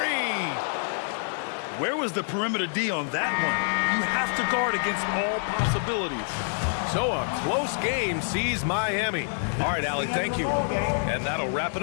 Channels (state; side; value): silent; right; digital silence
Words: Where was the perimeter D on that one? You have to guard against all possibilities. So a close game sees Miami. All right, Allie, thank you. And that'll wrap it